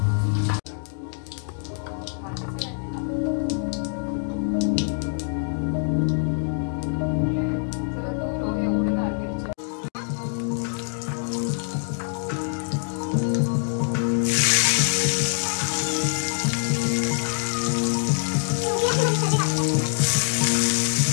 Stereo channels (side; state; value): right; silent; 60 dB below the other